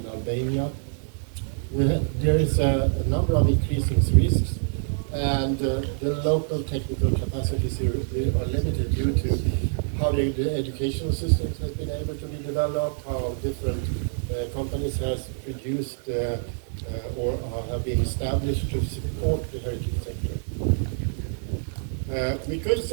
Albania. There is a number of increasing risks, and the local technical capacities are limited due to how the educational systems has been able to be developed, how different companies has produced or have been established to support the heritage sector. We could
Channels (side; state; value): left; silent; digital silence